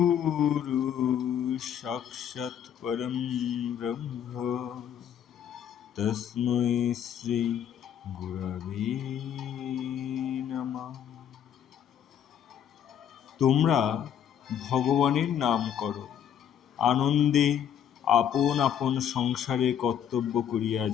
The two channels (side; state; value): right; quieter; 9.2 dB